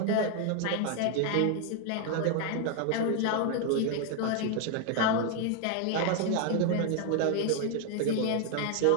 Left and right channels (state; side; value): different; both; correlation 0.00